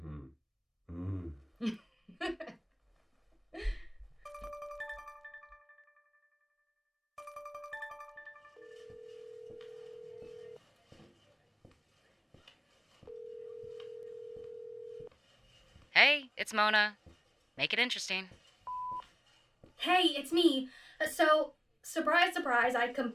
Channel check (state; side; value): identical; both; correlation 1.00